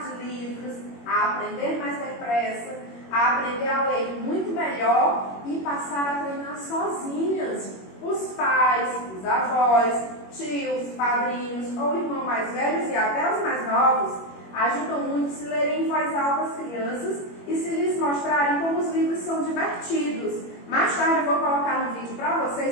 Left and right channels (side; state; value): right; late; 21 ms